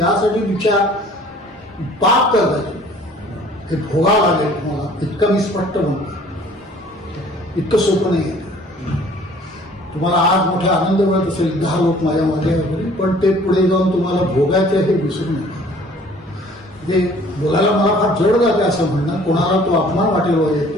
दीक्षा पाप करायची. हे भोगावं लागेल तुम्हाला. इतकं मी स्पष्ट म्हणतो. इतकं सोपं नाही आहे. तुम्हाला आज मोठा आनंद मिळत असेल 10 लोक माझ्या मागे वगैरे, पण ते पुढे जाऊन तुम्हाला भोगायचं हे विसरू नका. जे बोलायला मला फार जड जाते असं म्हणणं, कोणाला तो अपमान वाटेल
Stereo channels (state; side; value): normal; both; correlation 0.53